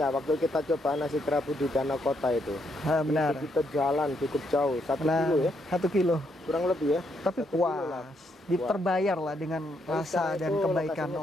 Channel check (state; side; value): normal; both; correlation 0.76